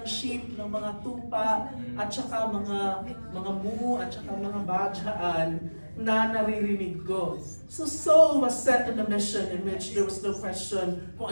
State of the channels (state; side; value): inverted; both; correlation -1.00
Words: sheep, ng mga tupa, at saka mga mu, at saka mga badyaan na naririnig ko. So Saul was set on a mission in which there was no question